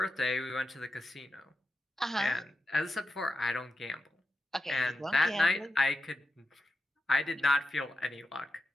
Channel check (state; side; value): normal; both; correlation 0.89